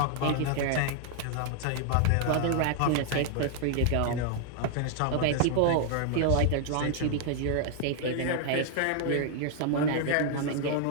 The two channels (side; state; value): both; different; correlation 0.00